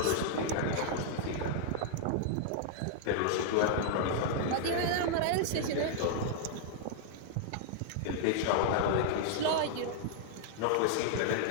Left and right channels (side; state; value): both; different; correlation -0.01